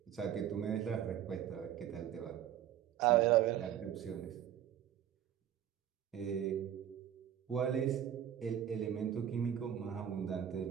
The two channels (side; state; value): left; quieter; 10.4 dB